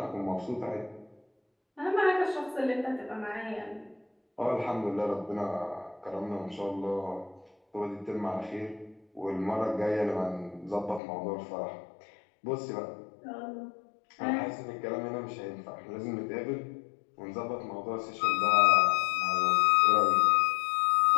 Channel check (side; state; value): right; drops out; at 11.0 s